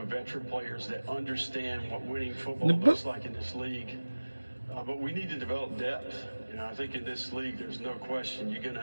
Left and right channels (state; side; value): inverted; both; correlation -1.00